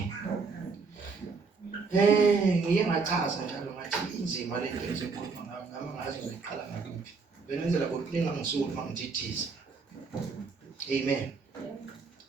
Ngiye ngachaza njalo ngathi inzima le nto ezokhuluma ngami ngazi ngiqala ngakuphi. Benenzela ukulinga ngisuku mangithithiza. Amen.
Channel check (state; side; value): quieter; left; 4.7 dB